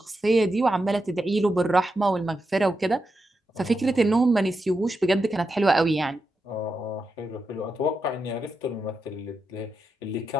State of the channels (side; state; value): both; normal; correlation 0.87